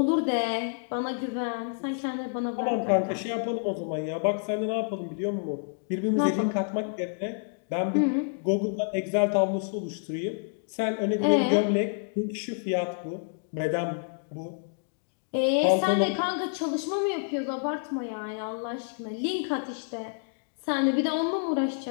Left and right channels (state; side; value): silent; right; digital silence